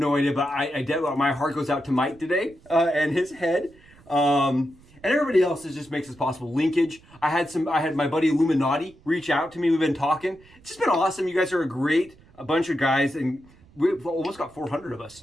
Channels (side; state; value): right; noise; rumble, 26 dB below the sound